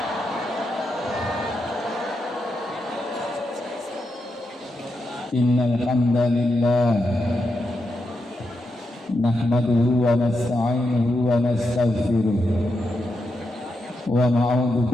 Innal hamdalillah nahmaduhu wa nasta'inuhu wa nastaghfiruh wa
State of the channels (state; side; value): normal; both; correlation 0.85